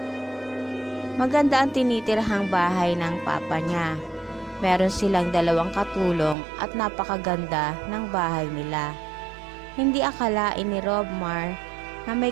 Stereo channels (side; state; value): left; drops out; at 6.4 s